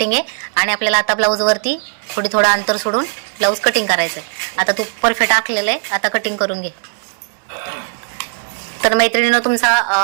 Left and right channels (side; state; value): left; silent; 68 dB below the other